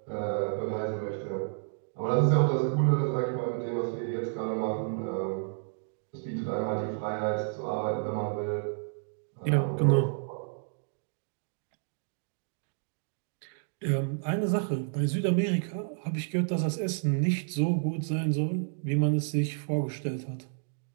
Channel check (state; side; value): silent; left; digital silence